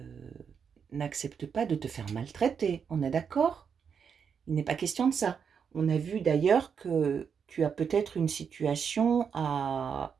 n'accepte pas de te faire maltraiter, on est d'accord? Il n'est pas question de ça. On a vu d'ailleurs que tu as peut-être une situation à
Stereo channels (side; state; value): left; quieter; 6.8 dB